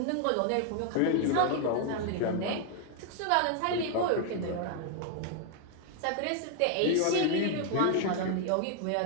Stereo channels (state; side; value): different; both; correlation 0.00